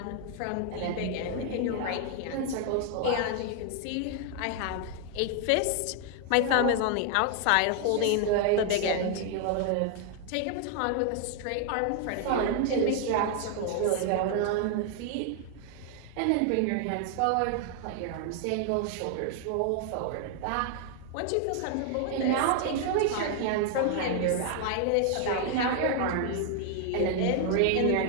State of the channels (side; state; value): both; different; correlation 0.00